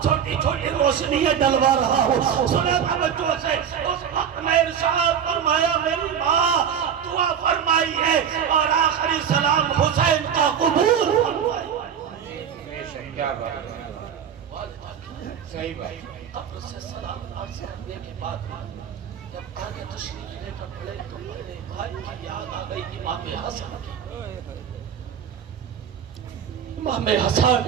چھوٹی چھوٹی روشنیاں ڈلوا رہا ہوں۔ سنیں توجہ سے، اس وقت میں ارشاد فرمایا میری ماں دعا فرمائیے اور آخری سلام حسین کا قبول فرمائیے۔ کیا بات ہے، صحیح بات۔ قبر سے سلام عرض کرنے کے بعد جب آگے تشریف لے کر پڑے تو میرے بھائی کی یاد آ گئی امام حسن کی۔ امام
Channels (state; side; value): quieter; left; 8.2 dB